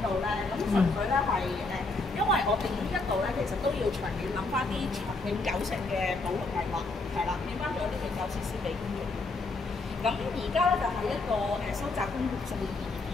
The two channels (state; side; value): quieter; right; 3.4 dB